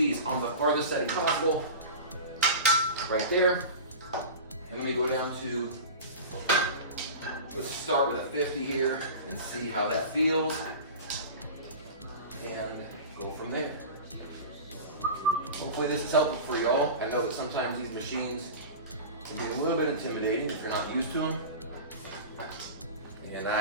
on the farthest setting possible, right there. And let me go down to, let's start with a 50 here and see how that feels. And go from there. Hopefully this is helpful for y'all. I know that sometimes these machines can be a little bit intimidating if you're not used to them. And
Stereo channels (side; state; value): both; inverted; correlation -0.32